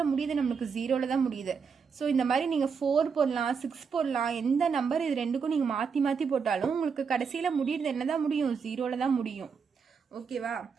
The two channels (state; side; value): quieter; left; 5.9 dB